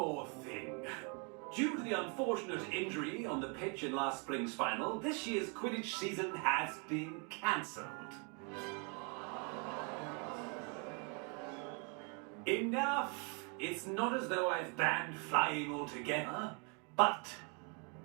thing. Due to the unfortunate injury on the pitch in last spring's final, this year's Quidditch season has been cancelled. Enough! It's not as though I've banned flying altogether, but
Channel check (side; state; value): left; quieter; 35.9 dB